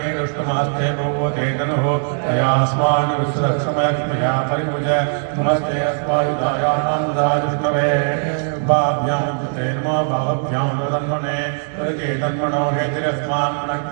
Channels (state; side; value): silent; left; digital silence